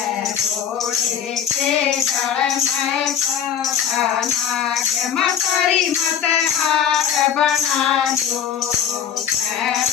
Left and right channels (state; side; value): quieter; right; 8.6 dB